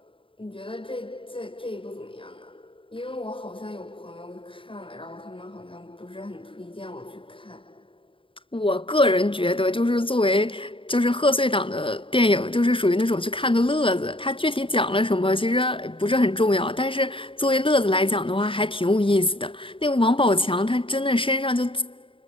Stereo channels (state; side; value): late; right; 0.25 ms